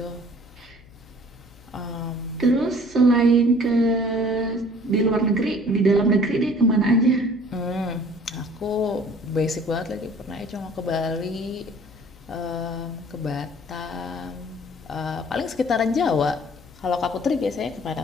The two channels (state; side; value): noise; left; hum, 23 dB below the sound